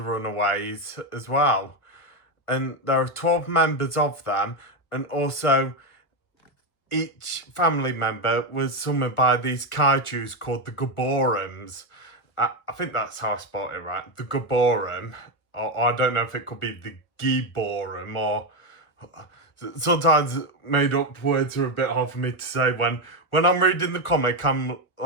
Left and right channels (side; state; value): right; late; 1.5 ms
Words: Runaways as well. And there are 12 members of them, and also each family member was summoned by these kaijus called the Gaborums. I think that's how I spelled it right, the Gaborum. Or I don't know if it could be the Giborum, or sometimes made up words are a bit hard for me to say. When I'm reading the comic, I'm